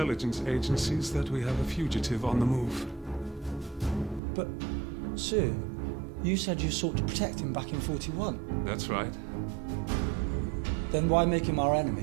agencies that we have a fugitive on the move. But, sir, you said you sought to protect him back in 41. That's right. Then why make him our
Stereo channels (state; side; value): drops out; left; at 4.2 s